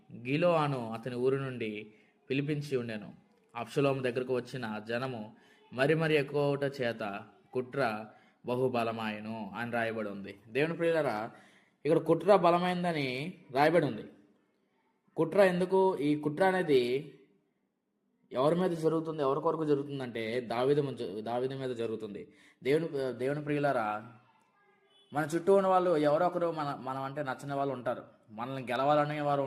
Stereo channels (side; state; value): both; identical; correlation 1.00